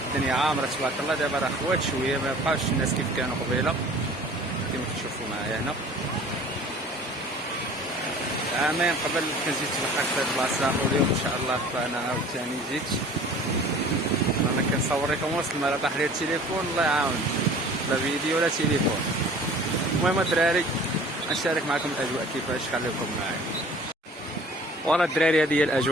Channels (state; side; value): normal; both; correlation 0.46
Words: الدنيا عامره تبارك الله، دابا راه خوات شويه، ما بقاوش الناس كيف كانوا قبيله كما كتشوفوا معايا هنا. عامين قبل كنت جيت تبحر في هذه البلاصه، واليوم ان شاء الله فانا عاوتاني جيت. انا كنصور لكم وسط الماء، طاح لي التليفون الله يعاون، لا فيديو ولا تليفون. المهم الدراري نشارك معكم الاجواء كيفاش، خليكم معايا. ورا الدراري هذه هي